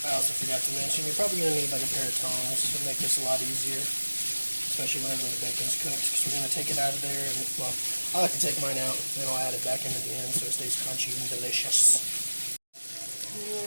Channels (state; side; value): inverted; both; correlation -1.00